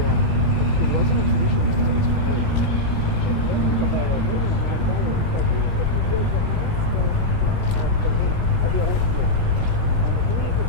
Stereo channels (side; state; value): both; normal; correlation -0.06